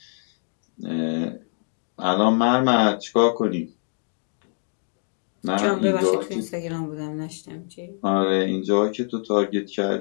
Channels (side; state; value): right; silent; 62 dB below the other